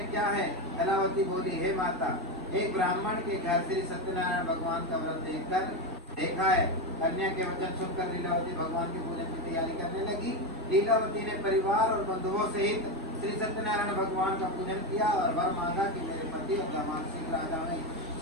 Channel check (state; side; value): normal; both; correlation 0.13